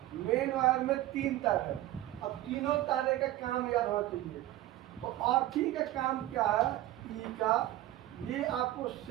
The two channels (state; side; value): quieter; left; 15.0 dB